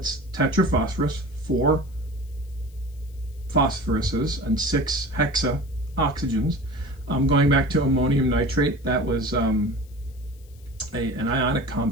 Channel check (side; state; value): left; noise; hiss, 29 dB below the sound